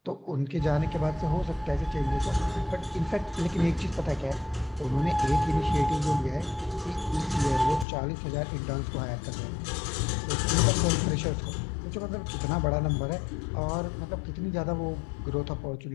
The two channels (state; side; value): drops out; right; at 7.9 s